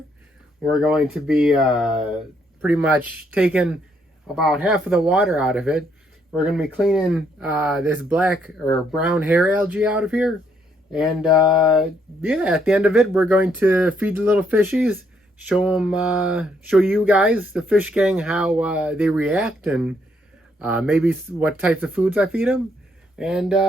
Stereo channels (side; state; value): both; normal; correlation 0.72